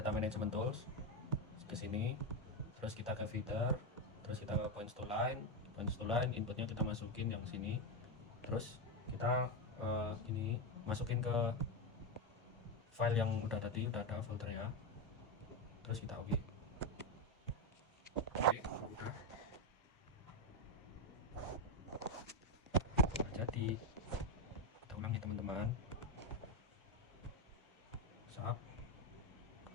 management tools, ke sini, terus kita ke feeder, terus kita ke points to line, inputnya kita masukin yang sini, terus kita ini masukin ke file yang udah tadi, udah ada foldernya, terus kita oke. Udah jadi, kita ulangi teman-teman. Sap,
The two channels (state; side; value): normal; both; correlation 0.09